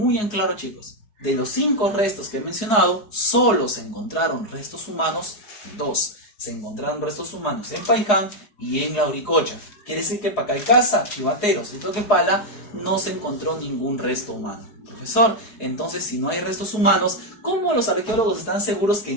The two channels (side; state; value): right; late; 4.7 ms